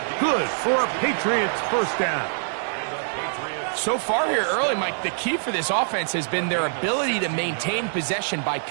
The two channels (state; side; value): silent; left; 62 dB below the other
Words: Good for a Patriots first down. So far here early, Mike, the key for this offense has been their ability to maintain possession by